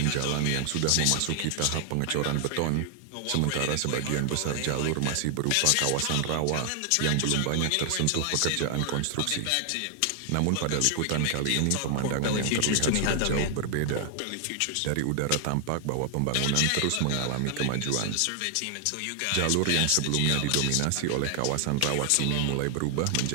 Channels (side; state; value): both; different; correlation 0.00